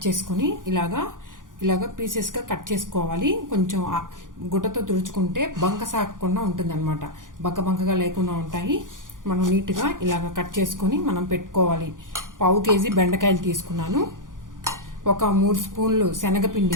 చేసుకుని ఇలాగా పీసెస్గా కట్ చేసుకోవాలి. కొంచెం గుట్టతో తుడుచుకుంటే బంక సాగకుండా ఉంటుంది అనమాట. బంకగా లేకుండా ఉంటాయి. మనం నీట్గా ఇలాగ కట్ చేసుకొని మనం పెట్టుకోవాలి. 1/2 కేజీ బెండకాయలు తీసుకున్నాను. ఒక 3 స్పూన్లు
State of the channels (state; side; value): late; left; 0.89 ms